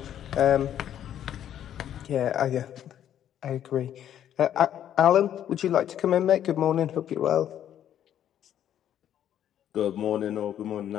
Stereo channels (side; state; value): right; quieter; 10.5 dB